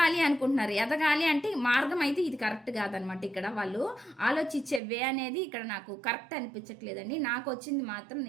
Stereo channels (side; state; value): left; drops out; at 4.8 s